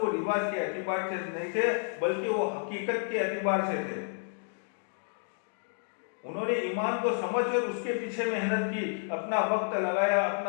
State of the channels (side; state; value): right; silent; 57 dB below the other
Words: رواج کے اعتبار سے نہیں تھے، بلکہ وہ حقیقت کے اعتبار سے تھے۔ انہوں نے ایمان کو سمجھ کر اس کے پیچھے محنت کی، اپنا وقت لگایا،